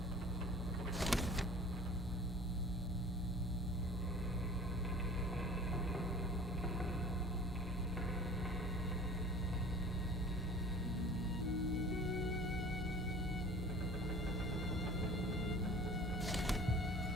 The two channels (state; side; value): normal; both; correlation 0.43